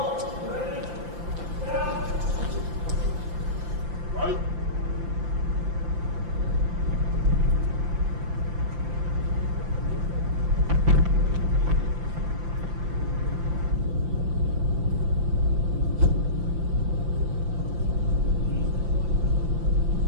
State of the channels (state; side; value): late; left; 5.8 ms